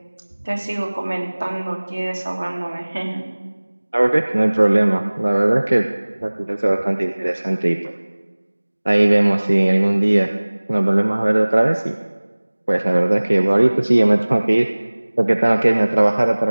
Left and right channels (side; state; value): both; inverted; correlation -1.00